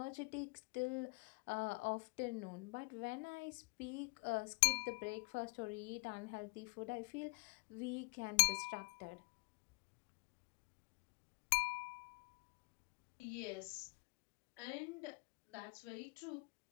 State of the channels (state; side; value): quieter; right; 31.8 dB